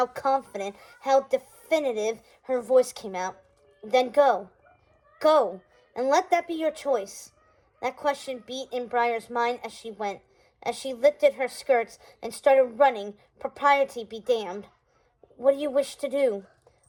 confident, how definitive her voice came out. "Then go. Go, and let that be your choice." That question beat in Briar's mind as she went, as she lifted her skirts and started running, propriety be damned. "What do you wish to do?"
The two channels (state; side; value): identical; both; correlation 1.00